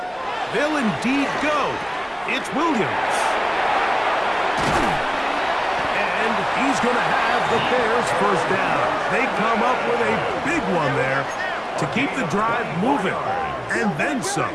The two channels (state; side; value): identical; both; correlation 1.00